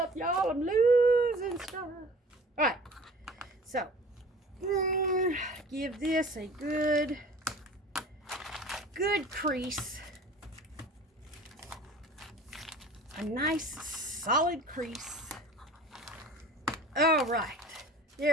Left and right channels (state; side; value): normal; both; correlation 0.44